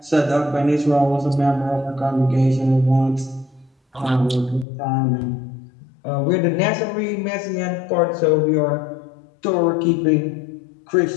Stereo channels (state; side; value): drops out; right; at 4.7 s